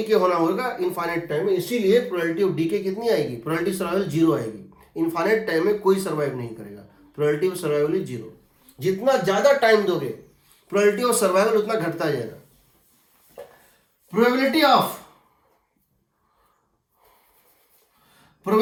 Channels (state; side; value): identical; both; correlation 1.00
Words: होना होगा इनफाइनाइट टाइम में। इसीलिए प्रोबेबिलिटी ऑफ डीके कितनी आएगी, प्रोबेबिलिटी सर्वाइवल 0 आएगी। इनफाइनाइट टाइम में कोई सर्वाइव नहीं करेगा, प्रोबेबिलिटी ऑफ सर्वाइवल इज 0। जितना ज्यादा टाइम दोगे प्रोबेबिलिटी ऑफ सर्वाइवल उतना घटता जाएगा। Probability